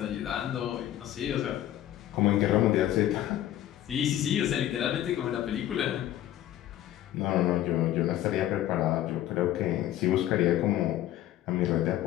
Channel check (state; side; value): quieter; right; 12.9 dB